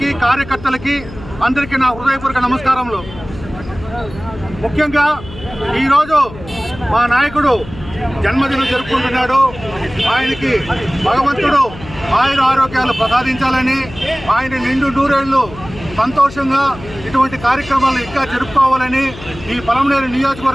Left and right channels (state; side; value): noise; left; hum, 16 dB below the sound